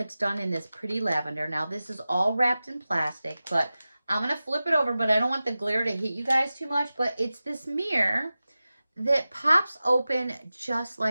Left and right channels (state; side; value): inverted; both; correlation -0.95